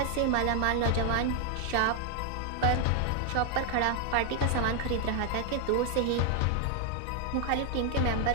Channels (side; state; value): both; different; correlation 0.00